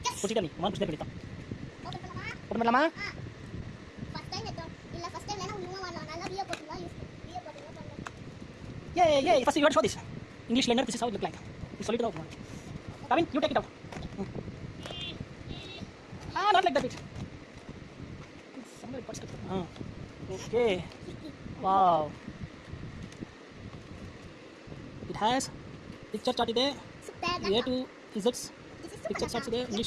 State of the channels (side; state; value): both; identical; correlation 1.00